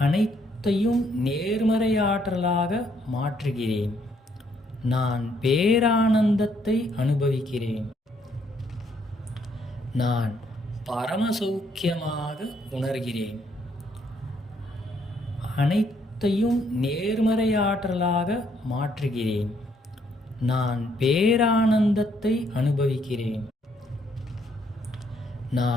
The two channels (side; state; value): both; normal; correlation 0.70